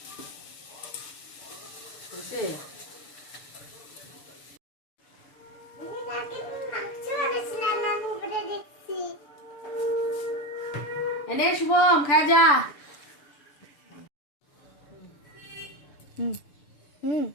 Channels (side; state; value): right; late; 6.8 ms